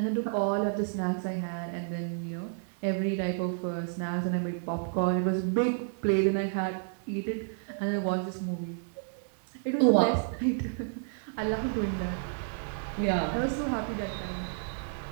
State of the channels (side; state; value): left; silent; 57 dB below the other